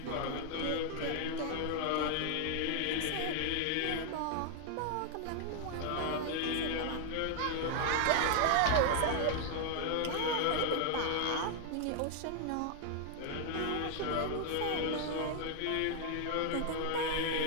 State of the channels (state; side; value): different; both; correlation 0.00